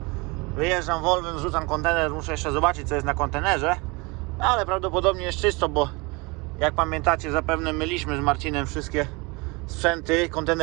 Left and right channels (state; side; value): quieter; left; 26.9 dB